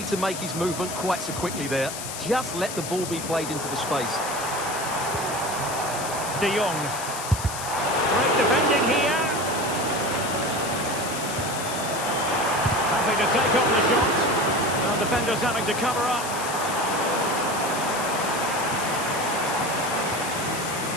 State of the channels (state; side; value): noise; left; hiss, 8 dB below the sound